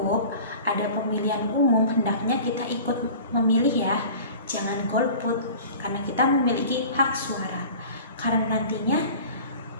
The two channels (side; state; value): both; inverted; correlation -0.41